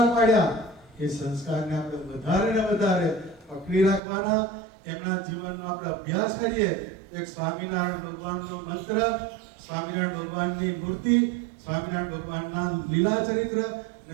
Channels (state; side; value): drops out; left; at 4.0 s